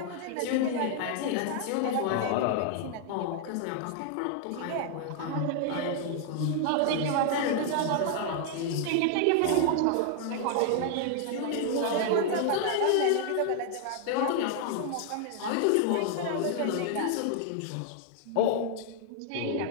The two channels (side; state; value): both; different; correlation 0.00